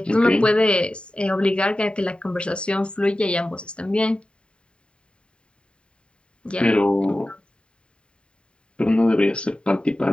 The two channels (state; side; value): late; right; 0.053 ms